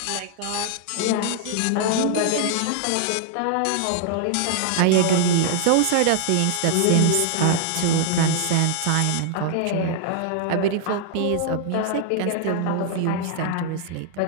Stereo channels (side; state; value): both; different; correlation -0.01